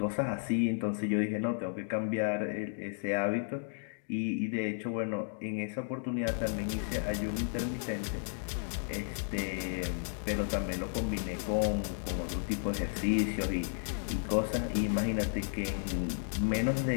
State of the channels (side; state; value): right; silent; digital silence